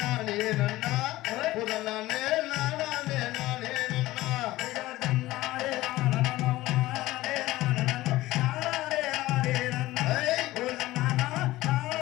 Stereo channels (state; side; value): quieter; right; 17.3 dB